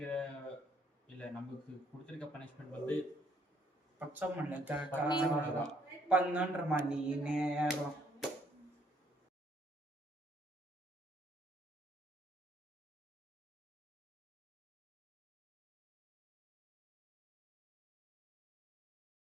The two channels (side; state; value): both; normal; correlation 0.67